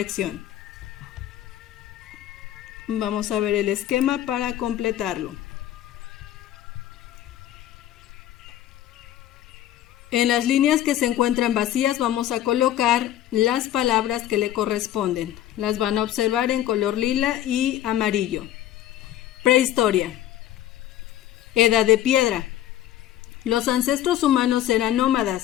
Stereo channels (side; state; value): right; quieter; 12.6 dB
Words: Vamos a ver el esquema para completarlo. En las líneas que se encuentran vacías vamos a colocar las palabras que le corresponden. Las van a observar en color lila y amarillo. Prehistoria. Edad de piedra. Los ancestros humanos eran